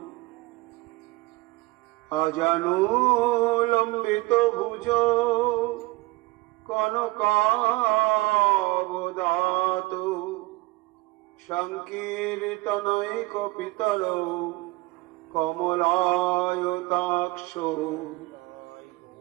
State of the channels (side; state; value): left; quieter; 21.4 dB